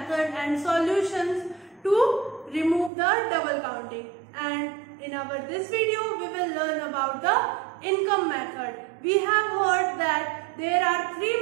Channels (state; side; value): drops out; left; at 2.9 s